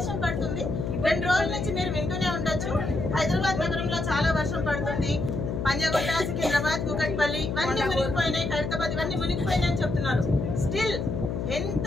పడుతుంది. 2 రోజుల నుంచి మీరు వింటూనే ఉండొచ్చు, హైదరాబాద్ నగరంలో చాలా వర్షం పడుతుంది. పంజాగుట్ట, సికింద్రాబాద్, కూకట్పల్లి ఇవన్నీ మునిగిపోయినాయి, ఖైరతాబాద్ ఇవన్నీ మునిగిపోయినాయి అని చెప్తున్నారు. స్టిల్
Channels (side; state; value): left; noise; hum, 3 dB below the sound